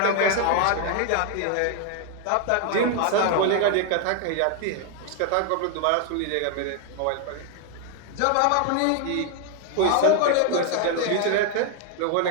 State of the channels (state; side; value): different; both; correlation 0.00